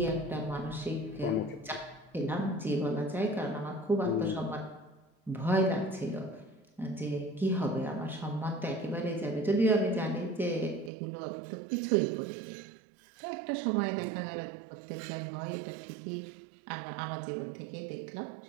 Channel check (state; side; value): drops out; left; at 10.9 s